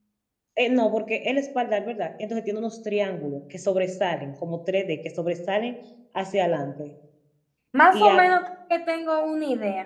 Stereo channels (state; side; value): identical; both; correlation 1.00